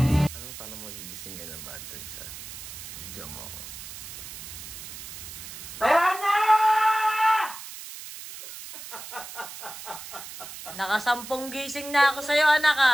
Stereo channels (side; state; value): right; noise; hiss, 11 dB below the sound